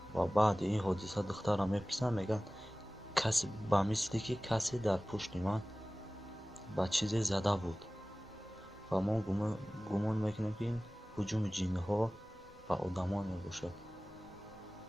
و بعد این حادثه دختر را میپرسن، میگن کسی با مثلی که کسی در پشت من با چیزی زده بود و ما گمان میکنیم که این هجوم جنها با آدمان میباشد.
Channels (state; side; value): noise; right; rumble, 26 dB below the sound